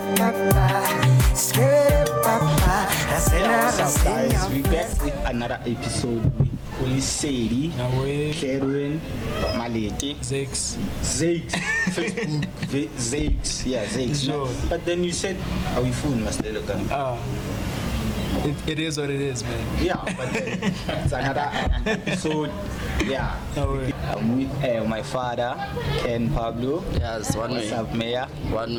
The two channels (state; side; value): identical; both; correlation 1.00